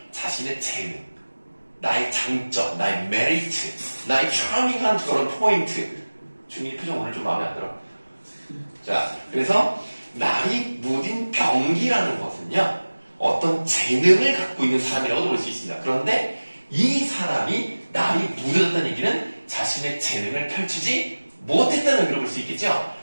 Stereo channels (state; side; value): inverted; both; correlation -1.00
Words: 자신의 재능, 나의 장점, 나의 메리트, 나의 차밍한 그런 포인트. 주민이 표정 오늘 좀 마음에 안 들어. 자, 그래서 날이 무딘 병기라는 것은요, 어떤 재능을 갖고 있는 사람이라고도 볼 수 있습니다. 그런데 이 사람이 날이 묻어졌다는 얘기는 자신의 재능을 펼치지 못했다는 의미로 볼 수 있겠죠?